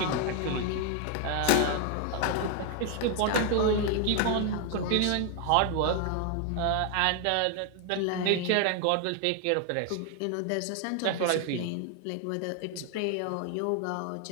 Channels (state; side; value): different; both; correlation 0.00